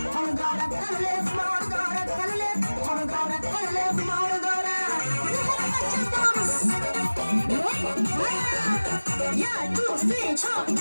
kolu doğra hele, kulağı doğra hele, kolu doğra hele, kulağı doğra. Ya dur sen çok.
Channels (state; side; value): inverted; both; correlation -1.00